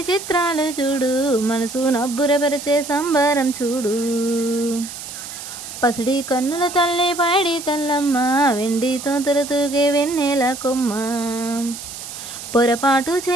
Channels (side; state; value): right; noise; hiss, 11 dB below the sound